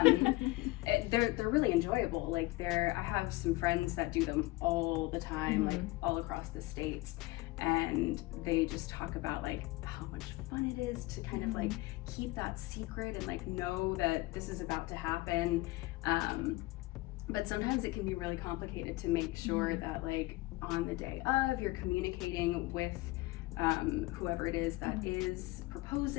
They're really enjoyable. Like I have some friends that do them all the time, like all across the states, and they just talk about like how much fun it is to kind of like keep that secret and like know that this is about to happen. But sometimes it can be really complicated to make sure that like on the day of you're communicating with whoever it is that is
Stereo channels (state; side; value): quieter; right; 20.5 dB